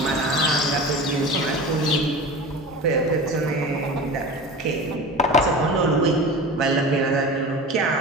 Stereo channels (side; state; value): both; normal; correlation 0.33